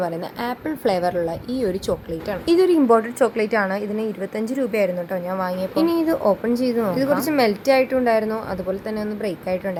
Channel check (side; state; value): both; identical; correlation 1.00